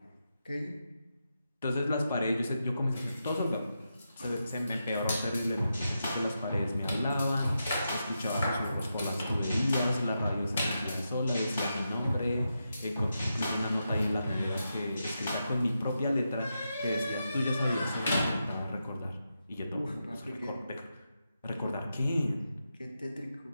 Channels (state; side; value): inverted; both; correlation -0.86